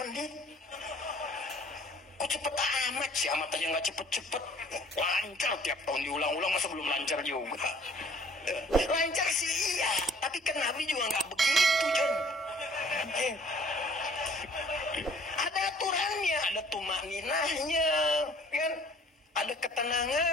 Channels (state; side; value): normal; both; correlation 0.55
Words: Kok cepet amat sih? Amat aja nggak cepet-cepet. Lancar tiap tahun diulang-ulang, masa belum lancar juga? Lancar sih iya, tapi kan Nabi juga nggak begitu, John. Ada aturannya, ada tumaninahnya, kan? Ada